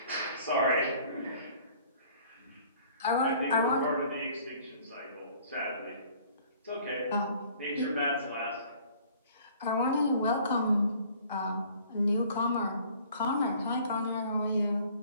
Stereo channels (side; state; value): both; inverted; correlation -0.54